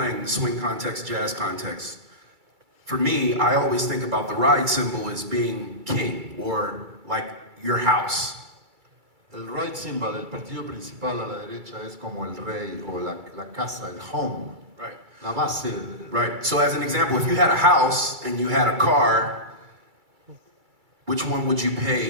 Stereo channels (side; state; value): left; late; 2.3 ms